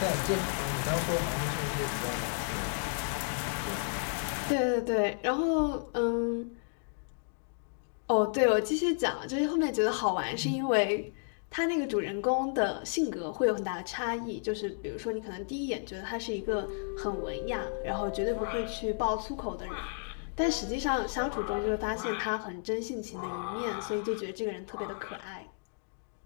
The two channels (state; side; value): silent; right; digital silence